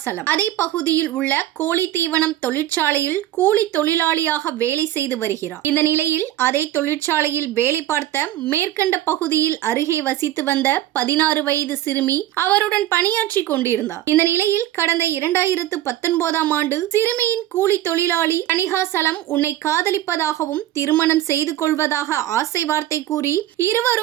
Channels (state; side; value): quieter; left; 13.7 dB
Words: அதே பகுதியில் உள்ள கோழி தீவனம் தொழிற்சாலையில் கூலி தொழிலாளியாக வேலை செய்து வருகிறார். இந்த நிலையில் அதே தொழிற்சாலையில் வேலை பார்த்த மேற்கண்ட பகுதியில் அருகே வசித்து வந்த 16 வயது சிறுமி அவருடன் பணியாற்றி கொண்டிருந்தார். இந்த நிலையில் கடந்த 2019ஆம் ஆண்டு சிறுமியின் கூலி தொழிலாளி தணிகாசலம் உன்னை காதலிப்பதாகவும் திருமணம் செய்து கொள்வதாக ஆசை வார்த்தை கூறி